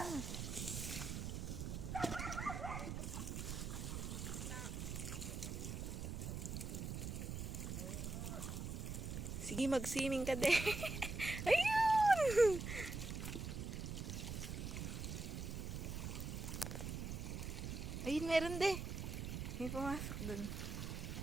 Sige, mag-swimming ka din. Ayun! meron de. May pumasok dun.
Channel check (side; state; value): right; noise; rumble, 4 dB below the sound